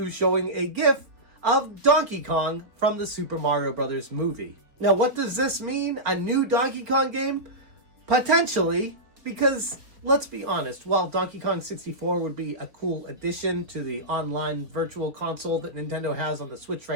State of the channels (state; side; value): late; left; 4.4 ms